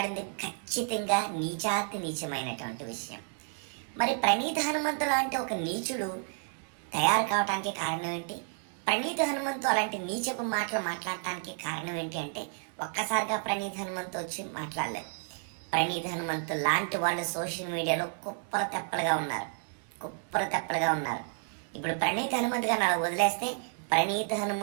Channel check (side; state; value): left; silent; 57 dB below the other